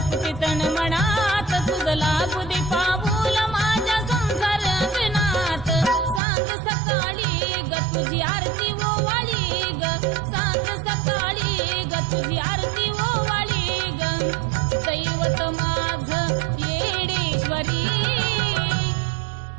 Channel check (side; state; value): left; drops out; at 6.2 s